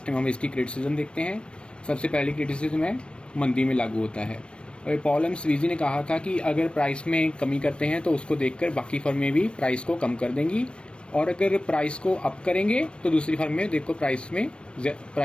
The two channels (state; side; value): late; right; 0.057 ms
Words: टाइम हम इसकी क्रिटिसिज्म देखते हैं। सबसे पहली क्रिटिसिज्म है मंदी में लागू होता है। और पॉल एम स्वीजी ने कहा था कि अगर प्राइस में कमी करते हैं तो उसको देखकर बाकी फर्में भी प्राइस को कम कर देंगी, और अगर प्राइस को अप करेंगे तो दूसरी फर्में देखो